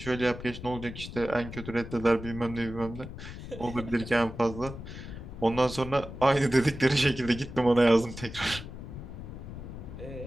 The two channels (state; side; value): noise; left; rumble, 11 dB below the sound